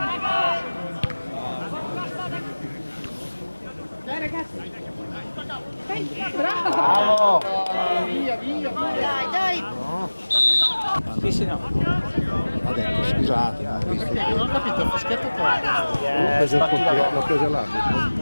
Bravo! Dai, dai! Sì, sì, no. Ha detto scusate. Non ho capito, il fischietto qua. L'ho preso l'arbitro.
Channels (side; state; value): both; inverted; correlation -1.00